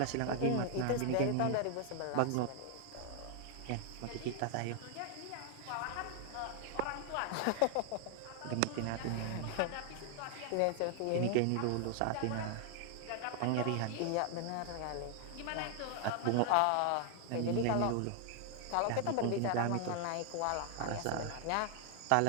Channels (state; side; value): different; both; correlation 0.00